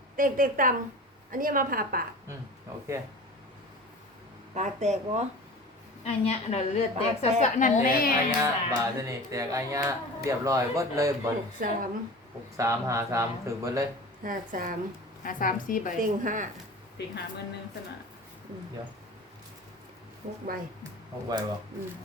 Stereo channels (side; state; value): both; normal; correlation 0.36